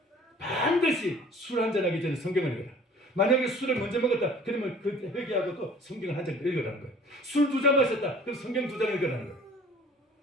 반드시 술 한 잔 하기 전에 성경을 읽어라. 만약에 술을 먼저 먹었다, 그러면 그 회개하고 또 성경을 한 장 읽으라는 거예요. 술 2잔 마셨다, 그럼 성경 2장 읽으라는 거예요.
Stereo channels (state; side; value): normal; both; correlation 0.49